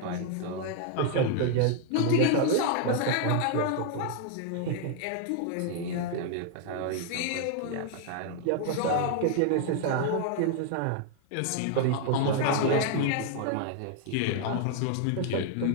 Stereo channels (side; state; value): both; different; correlation 0.00